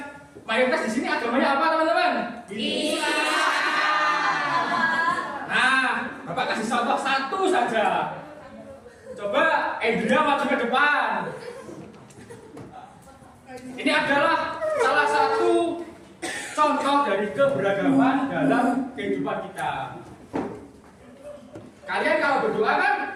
mayoritas di sini agamanya apa, teman-teman? Nah, Bapak kasih contoh satu saja. Coba Andrea maju ke depan. Ini adalah salah satu contoh dari keberagaman dalam kehidupan kita. Kalian kalau berdoa kan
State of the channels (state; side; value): identical; both; correlation 1.00